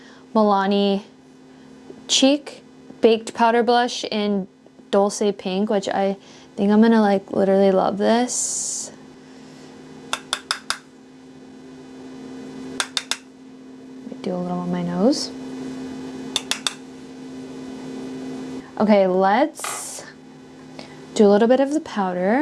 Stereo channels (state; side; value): identical; both; correlation 1.00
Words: Milani Cheek Baked Powder Blush in Dulce Pink, which I think I'm gonna like literally love this. Do a little on my nose. Okay, let's do a little bit of the